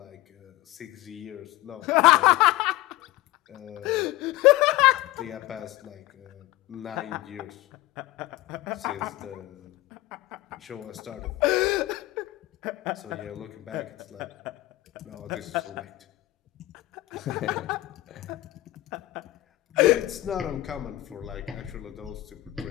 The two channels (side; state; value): right; quieter; 17.9 dB